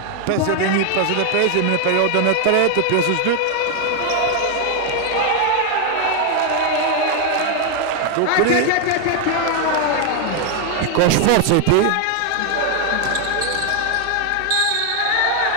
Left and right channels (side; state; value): both; different; correlation 0.00